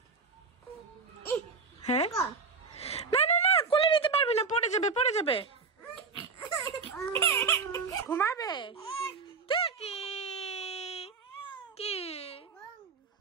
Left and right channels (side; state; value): left; quieter; 4.8 dB